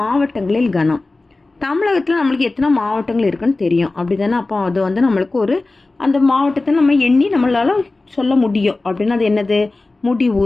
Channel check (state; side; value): quieter; right; 3.2 dB